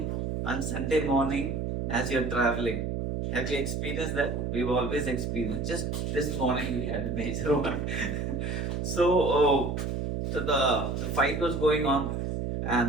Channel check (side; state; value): right; noise; hum, 2 dB below the sound